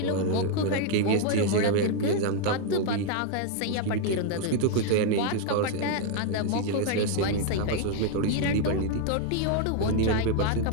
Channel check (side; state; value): both; different; correlation 0.01